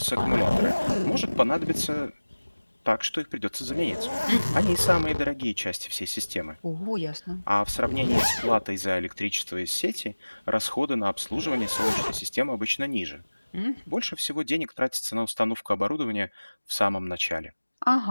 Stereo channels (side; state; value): both; inverted; correlation -1.00